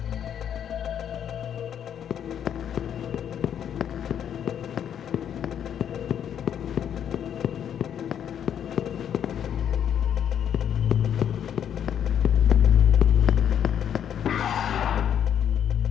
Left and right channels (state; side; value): quieter; right; 9.1 dB